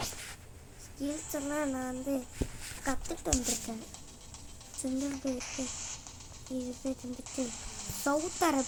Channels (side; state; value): both; identical; correlation 1.00